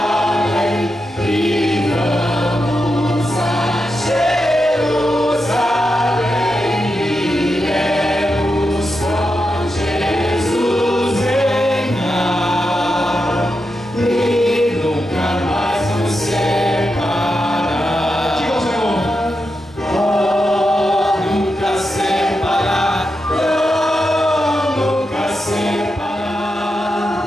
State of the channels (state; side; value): normal; both; correlation 0.87